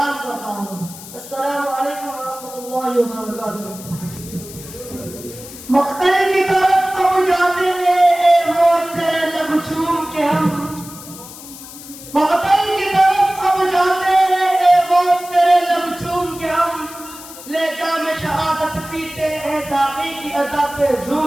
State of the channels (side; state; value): left; noise; hiss, 15 dB below the sound